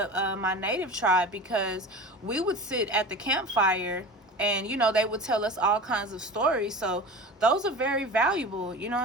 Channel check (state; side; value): normal; both; correlation 0.34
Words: my native tribe, because we would sit at the campfire and, you know, they would tell us all kinds of stories. So those are very valuable, you know